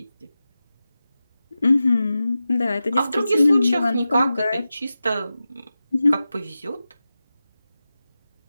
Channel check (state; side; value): inverted; both; correlation -0.93